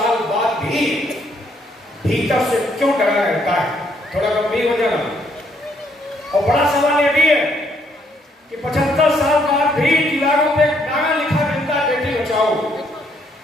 बाद भी भीतर से क्यों डरा रहता है। थोड़ा गंभीर हो जाना। और बड़ा सवाल यह भी है कि 75 साल बाद भी दीवारों पे नारा लिखा मिलता है बेटी बचाओ।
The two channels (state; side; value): normal; both; correlation 0.71